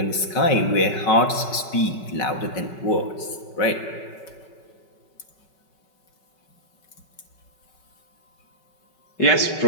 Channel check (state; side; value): late; right; 5.3 ms